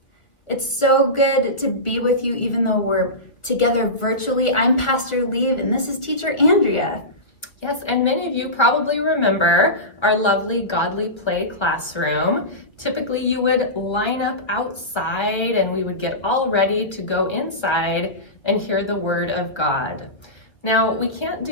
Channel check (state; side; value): late; right; 1.5 ms